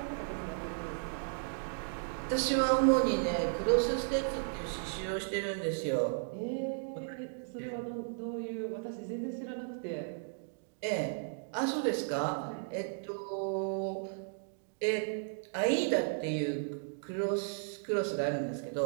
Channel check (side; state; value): left; silent; digital silence